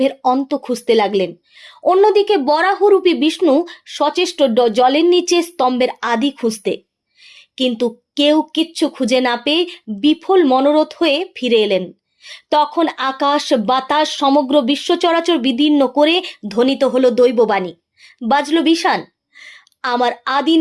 অন্ত খুঁজতে লাগলেন। অন্যদিকে বরাহরূপী বিষ্ণু সচেষ্ট জলের নিচে স্তম্ভের আদি খুঁজতে, কিন্তু কেউ কিচ্ছু খুঁজে না পেয়ে বিফল মনোরথ হয়ে ফিরে এলেন। তখন আকাশ বাতাস সমগ্র বিশ্ব চরাচর বিদীর্ণ করে ধ্বনিত হলো দৈববাণী, বাজলো বিষাণ। আমার আদি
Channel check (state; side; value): identical; both; correlation 1.00